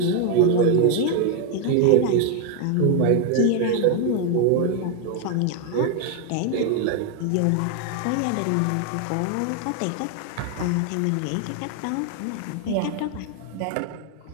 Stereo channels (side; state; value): both; different; correlation 0.01